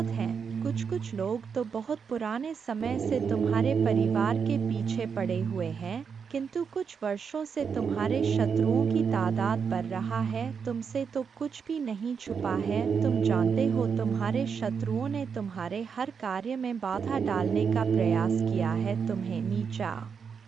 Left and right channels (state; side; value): quieter; left; 6.3 dB